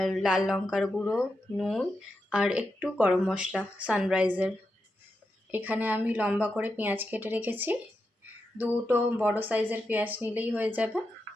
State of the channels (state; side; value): normal; both; correlation 0.87